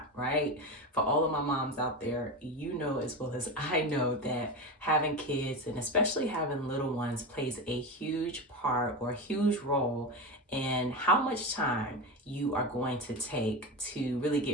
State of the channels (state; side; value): normal; both; correlation 0.21